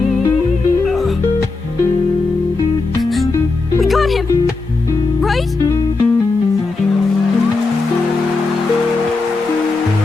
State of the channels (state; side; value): quieter; right; 3.7 dB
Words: We got him, right?